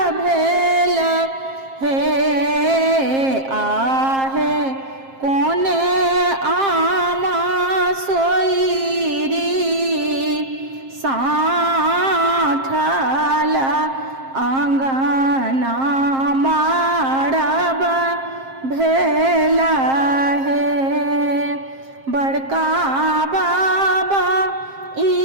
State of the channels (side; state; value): left; late; 7.5 ms